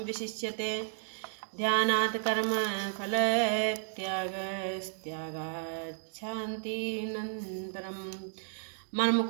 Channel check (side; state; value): left; silent; digital silence